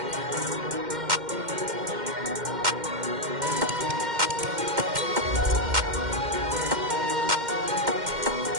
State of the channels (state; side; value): late; left; 2.1 ms